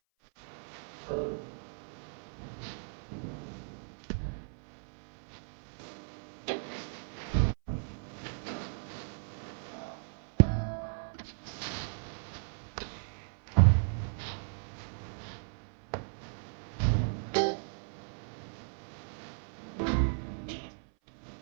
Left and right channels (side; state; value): left; silent; 54 dB below the other